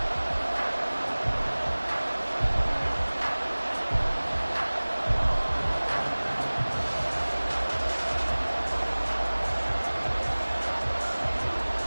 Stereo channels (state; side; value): inverted; both; correlation -1.00